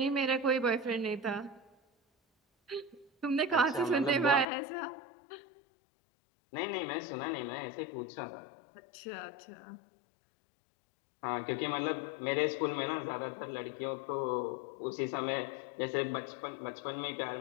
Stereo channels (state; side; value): drops out; right; at 4.5 s